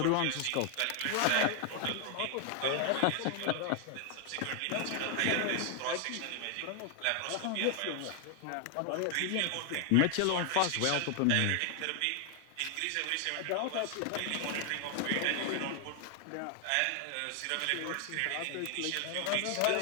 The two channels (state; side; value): different; both; correlation 0.00